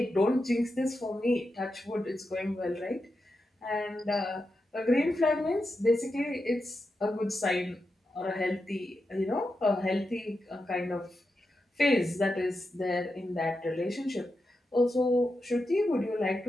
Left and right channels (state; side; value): normal; both; correlation 0.88